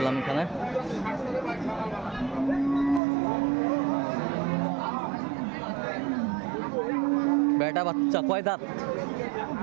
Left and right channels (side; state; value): left; drops out; at 3.0 s